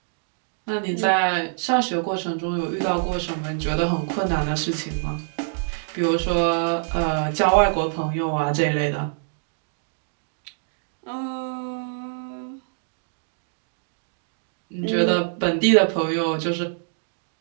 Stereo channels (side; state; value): left; silent; digital silence